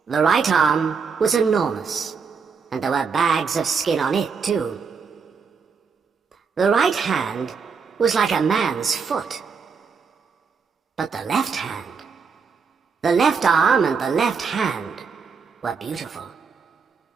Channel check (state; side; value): quieter; left; 5.6 dB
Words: The right arm was enormous, and there were bags of skin on it too. The right hand was like a man's foot. But the left hand, the left arm and the left hand were beautiful.